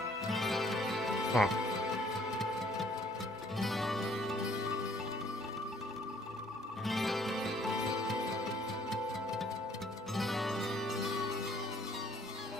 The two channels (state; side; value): normal; both; correlation 0.61